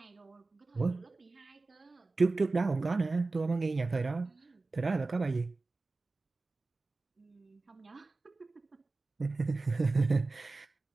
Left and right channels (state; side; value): quieter; left; 3.5 dB